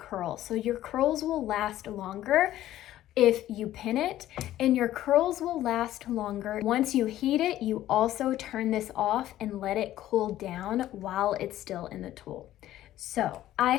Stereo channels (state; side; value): quieter; right; 13.6 dB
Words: So your curls will last longer if you pin it, and your curls will last longer. Once you heat it, you also turn this off and let it cool down while it's still in the tool. So I